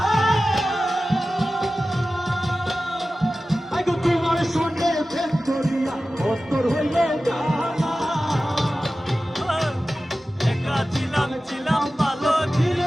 আগে তোমার সঙ্গে প্রেম করিয়া অন্তর হইল জানা একা ছিলাম ভালো ছিল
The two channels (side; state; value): both; normal; correlation 0.95